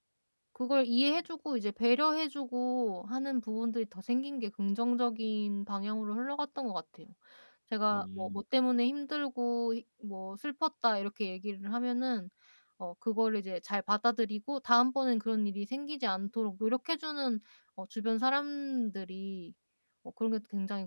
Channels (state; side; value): inverted; both; correlation -1.00